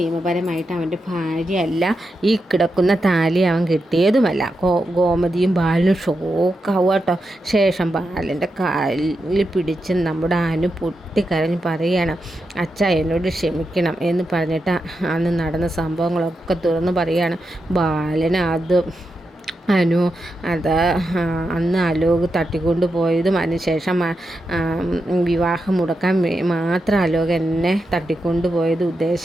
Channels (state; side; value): normal; both; correlation 0.87